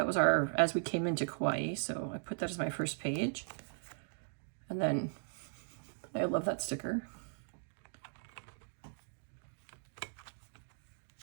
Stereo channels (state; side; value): silent; left; digital silence